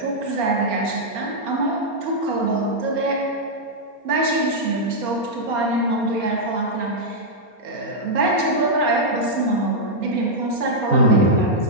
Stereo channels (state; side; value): late; left; 4.3 ms